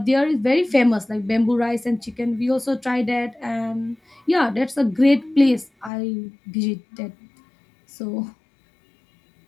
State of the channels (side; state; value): right; drops out; at 5.9 s